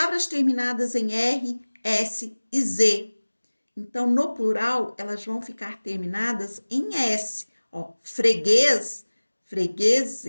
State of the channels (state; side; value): inverted; both; correlation -1.00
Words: terminadas em R, S e Z. Então, no plural, elas vão ficar terminadas em S. Ó, freguês,